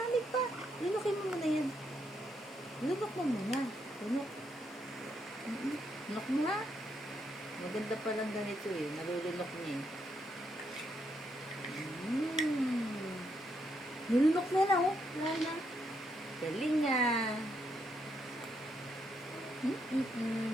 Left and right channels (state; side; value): normal; both; correlation 0.77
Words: pa. Lunukin mo muna yan. Lunok mo muna. Lunok. Lunok mo na. Maganda pa lang ganito eh. Nalulunok niya eh. Nalunok na lang oh. Wala na. Galing nga.